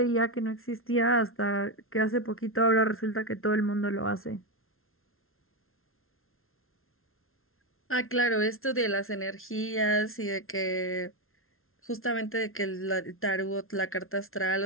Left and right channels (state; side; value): late; right; 0.61 ms